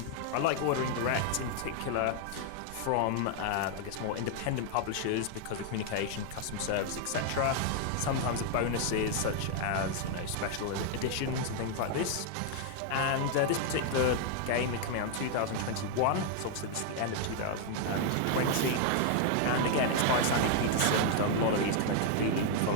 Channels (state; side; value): different; both; correlation 0.00